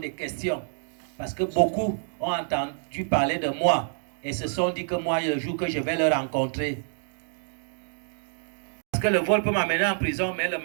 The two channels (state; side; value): silent; left; 60 dB below the other